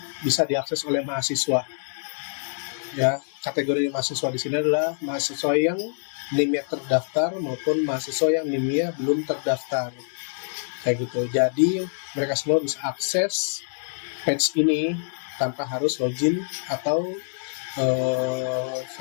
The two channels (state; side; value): silent; right; digital silence